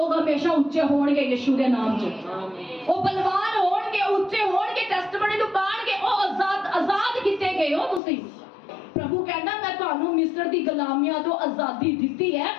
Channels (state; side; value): drops out; right; at 8.0 s